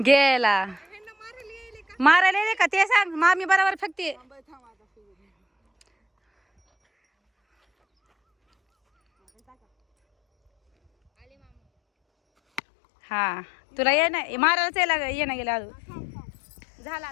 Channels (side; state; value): right; drops out; at 12.6 s